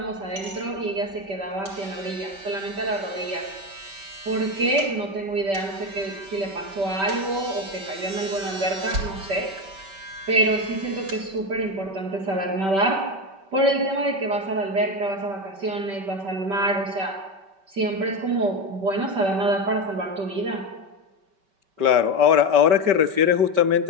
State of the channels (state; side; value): late; left; 5.2 ms